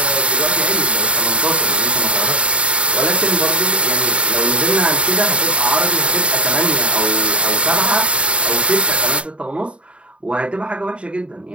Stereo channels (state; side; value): late; left; 0.060 ms